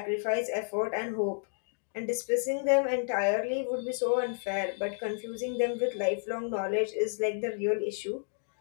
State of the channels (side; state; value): right; silent; digital silence